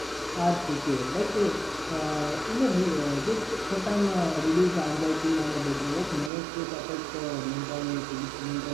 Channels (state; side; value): drops out; left; at 6.3 s